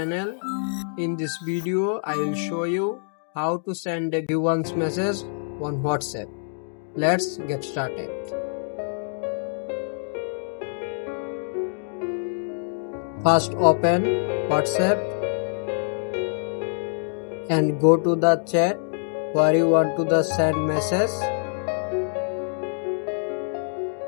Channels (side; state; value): right; silent; digital silence